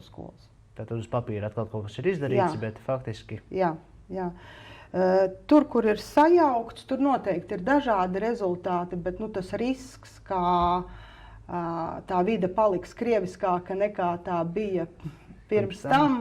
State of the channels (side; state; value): both; identical; correlation 1.00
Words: skolas. Tātad uz papīra atkal kaut kas ir izdarīts, bet faktiski... Jā. Tur, kur ir sajaukts, tur noteikti ir dažādi rezultāti, bet tas risks, kā tā vide paliks krieviskāka nekā tā bija pirms